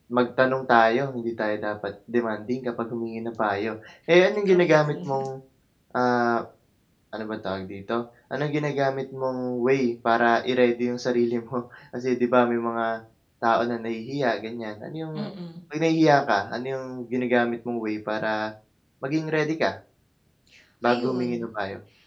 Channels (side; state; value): both; identical; correlation 1.00